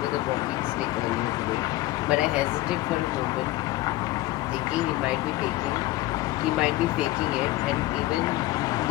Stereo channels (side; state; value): right; quieter; 17.5 dB